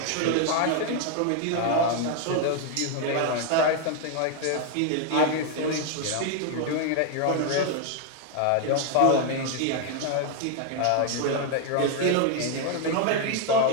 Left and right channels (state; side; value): different; both; correlation 0.01